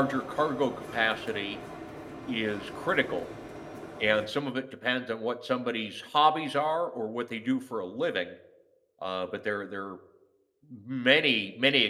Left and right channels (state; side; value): identical; both; correlation 1.00